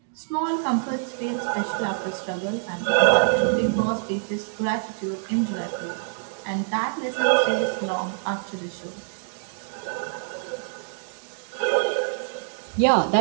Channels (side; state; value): left; silent; digital silence